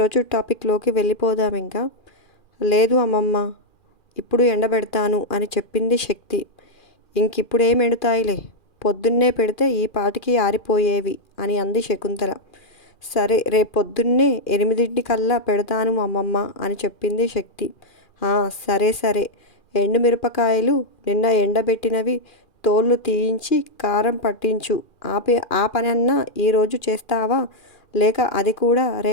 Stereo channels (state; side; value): late; right; 2.4 ms